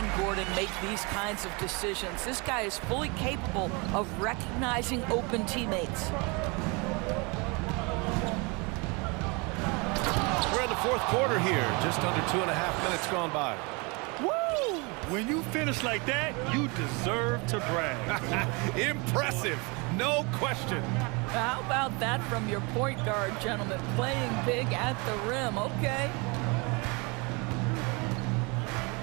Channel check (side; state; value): left; quieter; 29.3 dB